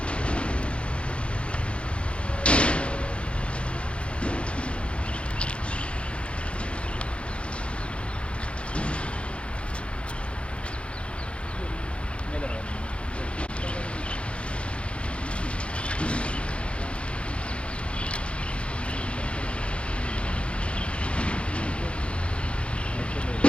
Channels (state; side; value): late; right; 0.059 ms